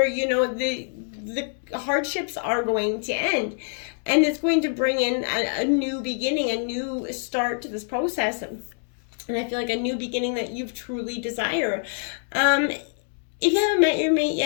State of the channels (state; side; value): silent; right; digital silence